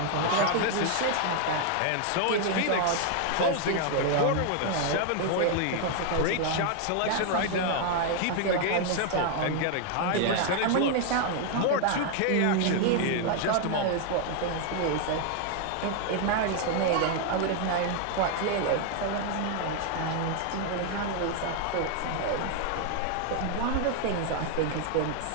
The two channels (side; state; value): both; different; correlation 0.00